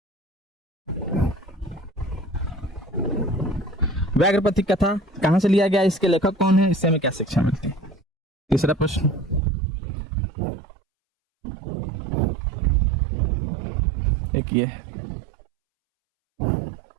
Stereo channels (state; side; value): drops out; left; at 9.4 s